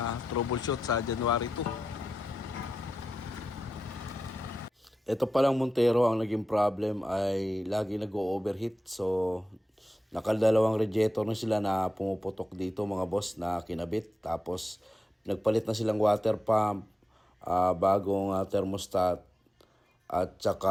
troubleshoot sa January 2. Ito palang Montero, ang naging problem ay lagi nag-overheat. So, nakadalawang radiator na sila na pumuputok dito mga boss na kinabit. Tapos, nagpalit na silang water pump, bagong thermostat, at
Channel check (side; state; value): both; normal; correlation 0.91